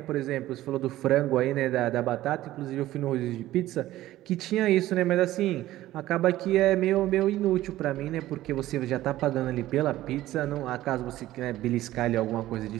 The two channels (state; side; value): quieter; left; 15.1 dB